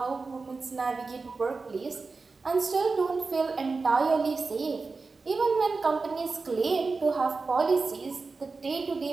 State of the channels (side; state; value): left; quieter; 4.1 dB